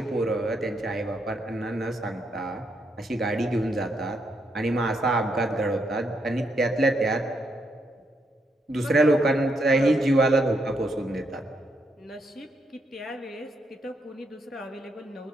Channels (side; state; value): both; normal; correlation 0.78